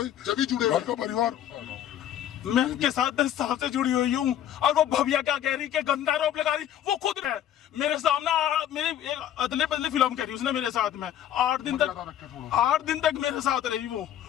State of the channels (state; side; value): quieter; right; 11.0 dB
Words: जब भी जुड़े घर का परिवार। मैं उनके साथ 10 साल से जुड़ी हुई हूँ, और वो भव्या क्या कह रही कि गंदा आरोप लगा रही, वो खुद है मेरे सामने, मेरी एक अदले बदले फिल्म कह रही उसने मेरे साथ में 8 दिन तक मेरे साथ रही।